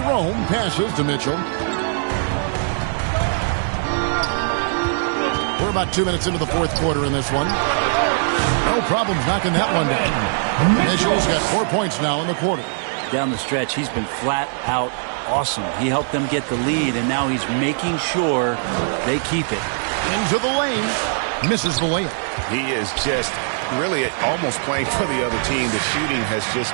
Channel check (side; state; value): left; silent; 64 dB below the other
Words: passes to Mitchell. We're about 2 minutes into the fourth quarter in this one. No problems knocking that one down. Mitchell's got 4 points now in the quarter. Down the stretch, he's been flat out awesome. He helped them get the lead, and now he's making sure they keep it. Into the lane. Misses the layup. He is just really almost playing for the other team. The shooting has just